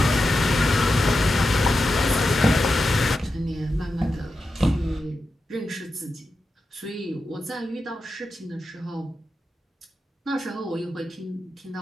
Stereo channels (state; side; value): normal; both; correlation 0.90